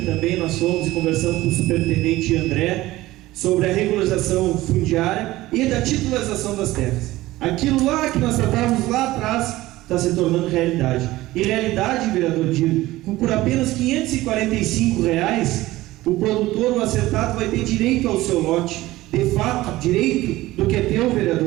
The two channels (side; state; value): left; quieter; 17.4 dB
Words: nós fomos e conversamos com o superintendente André sobre a regularização fundiária e da titularização das terras. Aquilo lá que nós tratávamos lá atrás está se tornando realidade. E realidade, vereador Dino, por apenas R$545, o produtor, o acertado, vai ter direito ao seu lote. De fato, direito do que é teu,